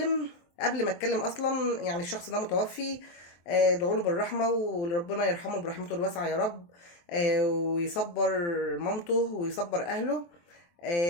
قبل ما اتكلم اصلا يعني الشخص ده متوفي. ادعوا له بالرحمه وربنا يرحمه برحمته الواسعه يا رب. ويصبر مامته ويصبر اهله.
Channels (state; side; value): late; right; 23 ms